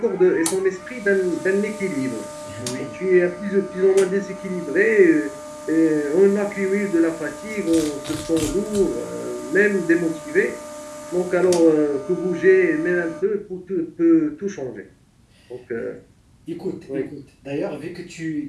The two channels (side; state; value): both; identical; correlation 1.00